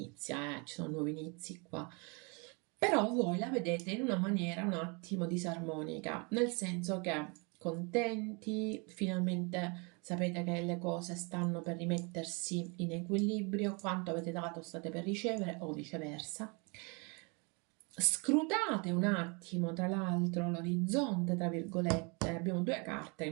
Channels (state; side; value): quieter; left; 31.9 dB